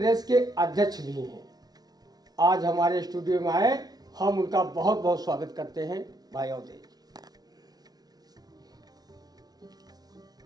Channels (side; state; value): left; late; 0.19 ms